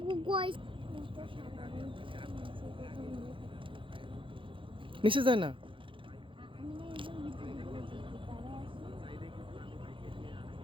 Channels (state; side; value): late; left; 0.25 ms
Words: গয় নিচে যায় না।